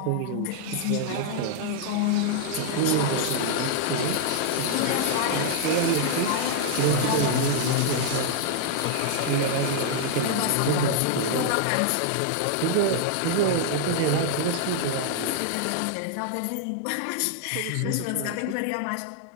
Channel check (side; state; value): both; different; correlation -0.01